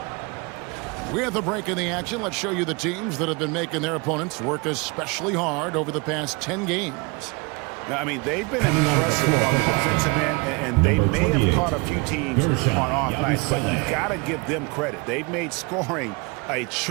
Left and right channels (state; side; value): quieter; left; 28.5 dB